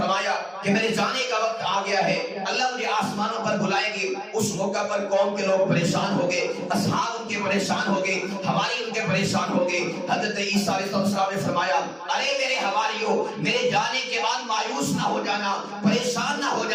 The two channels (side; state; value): both; identical; correlation 1.00